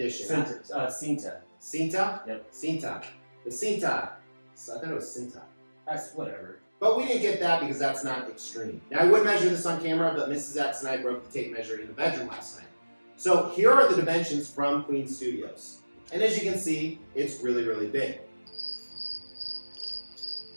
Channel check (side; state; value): both; inverted; correlation -1.00